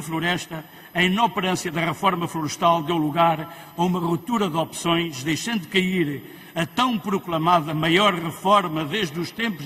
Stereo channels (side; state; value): both; identical; correlation 1.00